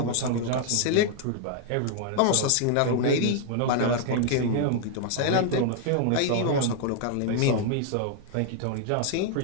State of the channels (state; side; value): different; both; correlation 0.00